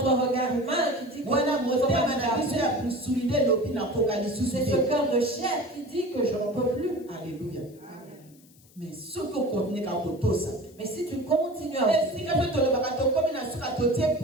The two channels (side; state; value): left; noise; hiss, 28 dB below the sound